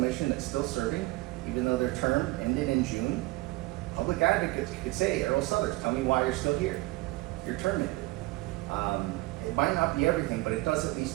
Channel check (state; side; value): quieter; left; 20.8 dB